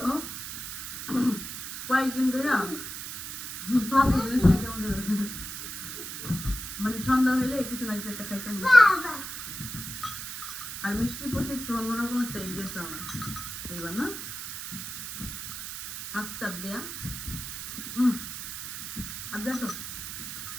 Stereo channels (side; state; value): right; noise; hiss, 7 dB below the sound